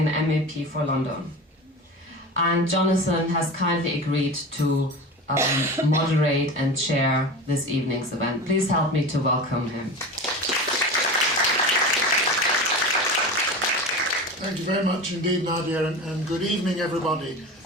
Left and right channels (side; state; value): both; normal; correlation 0.30